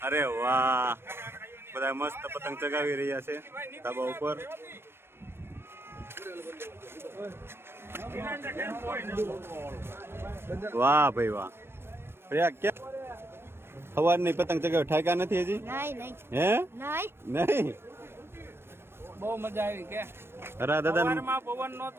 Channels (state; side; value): late; left; 0.12 ms